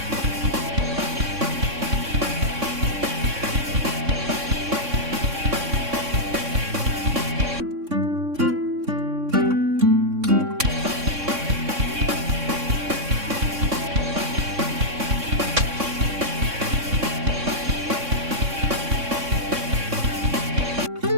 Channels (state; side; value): late; left; 3.6 ms